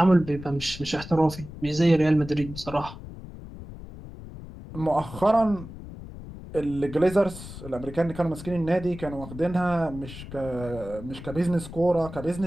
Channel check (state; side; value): noise; left; rumble, 13 dB below the sound